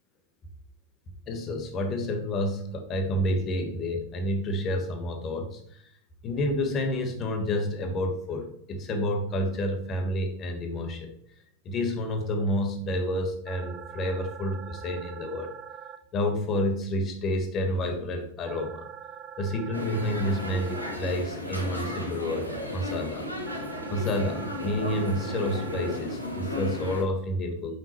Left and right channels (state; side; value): normal; both; correlation 0.22